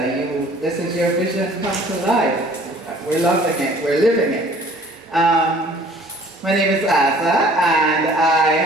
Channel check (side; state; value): both; normal; correlation 0.53